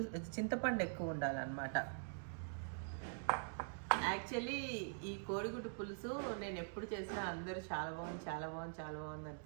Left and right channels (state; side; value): silent; left; digital silence